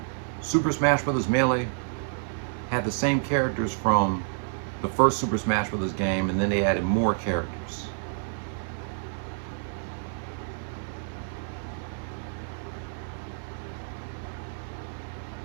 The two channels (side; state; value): left; silent; digital silence